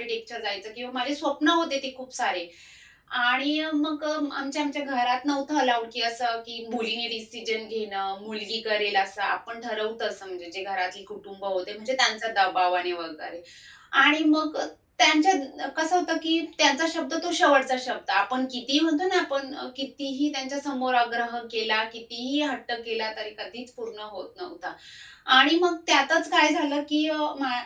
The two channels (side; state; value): both; identical; correlation 1.00